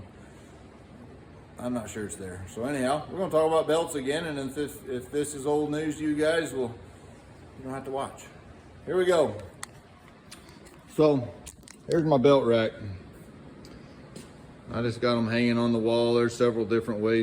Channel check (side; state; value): both; identical; correlation 1.00